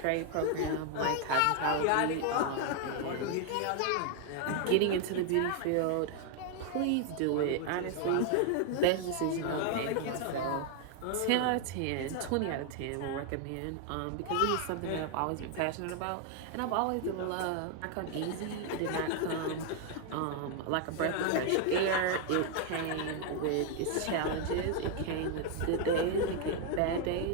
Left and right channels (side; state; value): both; different; correlation 0.00